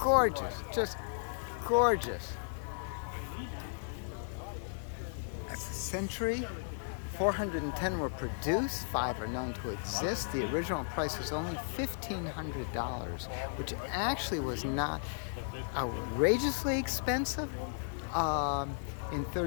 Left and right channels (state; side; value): silent; right; 54 dB below the other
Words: just gorgeous. That's a Century. 410 were produced, 5 are known to exist. The original price was only $1,500, which actually was not outrageously expensive. In